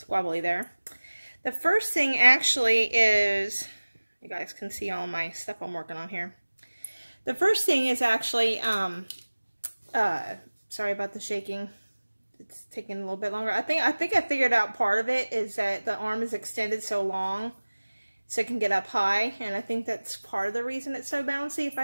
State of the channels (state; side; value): inverted; both; correlation -1.00